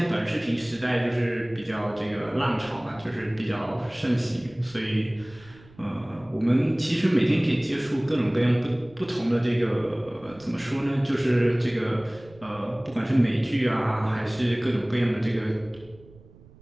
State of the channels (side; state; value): right; noise; rumble, 24 dB below the sound